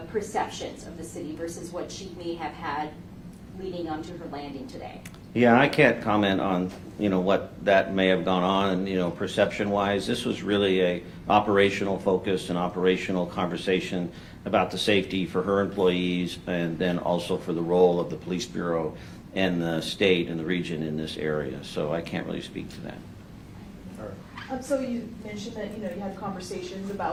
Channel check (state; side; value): identical; both; correlation 1.00